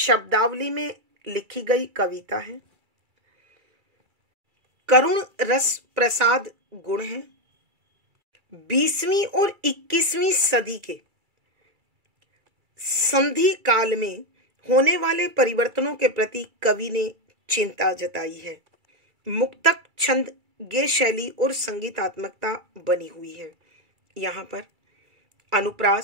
में लिखी गई कविता है, करुण रस प्रसाद गुण है। 20वीं और 21वीं सदी के संधि काल में होने वाले परिवर्तनों के प्रति कवि ने चिंता जताई है। मुक्तक, छंद, गेय शैली और संगीतात्मकता बनी हुई है। यहाँ पर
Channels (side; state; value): left; late; 2.3 ms